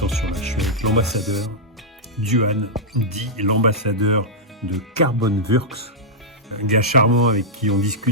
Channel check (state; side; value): normal; both; correlation -0.08